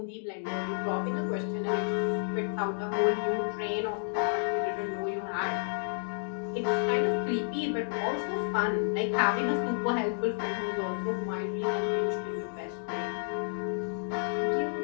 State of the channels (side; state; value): right; silent; digital silence